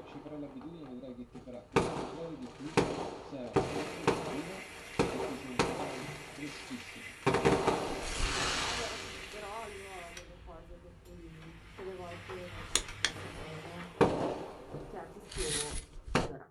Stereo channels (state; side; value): identical; both; correlation 1.00